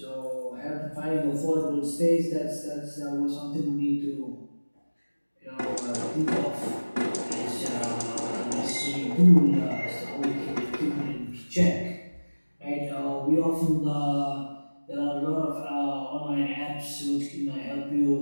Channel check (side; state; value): both; inverted; correlation -1.00